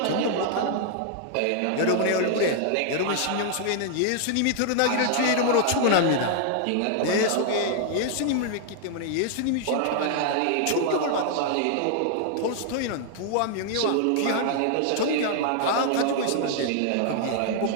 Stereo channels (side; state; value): both; different; correlation 0.00